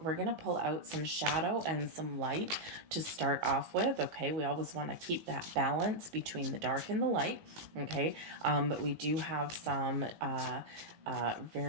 some shadow and some light to start off with. Okay, we always want to keep that balance between the dark and the light. Okay, but we do have some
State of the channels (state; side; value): late; left; 18 ms